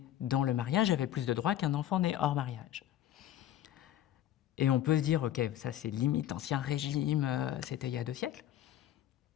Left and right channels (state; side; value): quieter; right; 11.9 dB